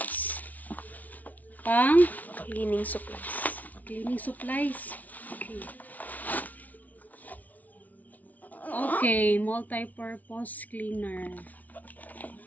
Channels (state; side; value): late; right; 0.074 ms